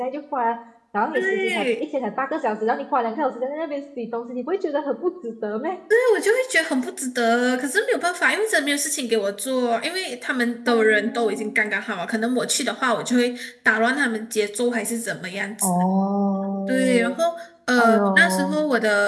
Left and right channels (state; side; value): identical; both; correlation 1.00